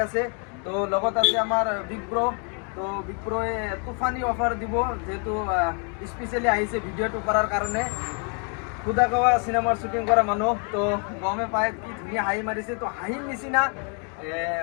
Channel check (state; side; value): quieter; right; 39.5 dB